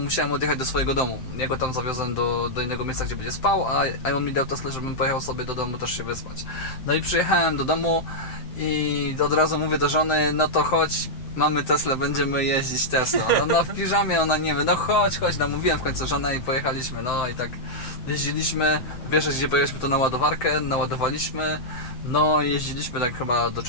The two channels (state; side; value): late; right; 7.8 ms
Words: odjechać do swojego domu. Ja go tam zawiozłem do innego miejsca, gdzie będzie spał, a on mi dał Teslę, żebym pojechał sobie do domu też się wyspać. No i przyjechałem do domu i od razu mówię do żony, no to chodź, mamy Teslę, będziemy jeździć Teslą. No w piżamie ona nie wie, no chodź, namówiłem w końcu żonę i pojechaliśmy, no i tak jeździliśmy, wiesz gdzie pojechaliśmy to na ładowarkę, naładowaliśmy, no i jeździliśmy tak chyba do